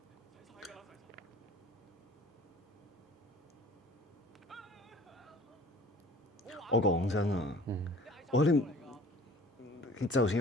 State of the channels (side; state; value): both; normal; correlation 0.48